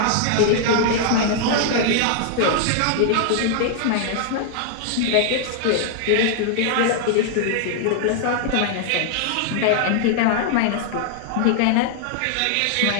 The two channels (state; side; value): different; both; correlation 0.00